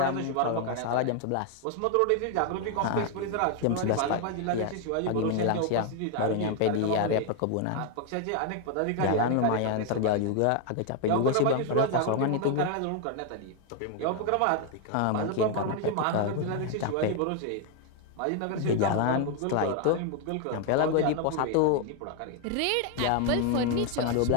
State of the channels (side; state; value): both; different; correlation 0.01